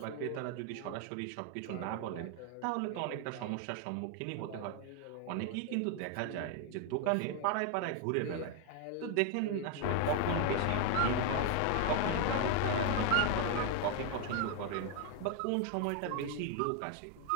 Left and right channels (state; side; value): different; both; correlation 0.01